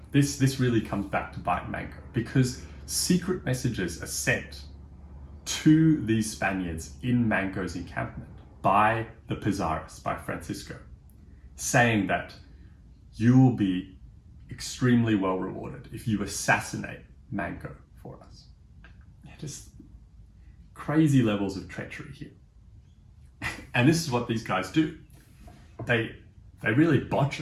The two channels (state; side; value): identical; both; correlation 1.00